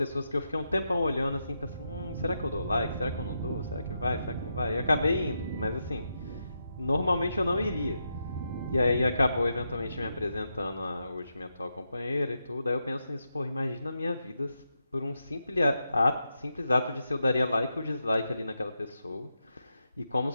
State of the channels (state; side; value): inverted; both; correlation -0.84